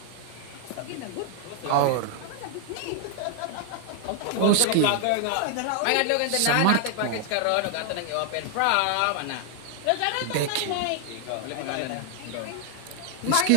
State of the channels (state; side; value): different; both; correlation 0.00